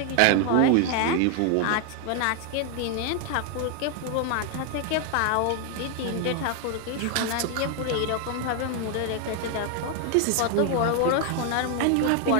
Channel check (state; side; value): different; both; correlation 0.00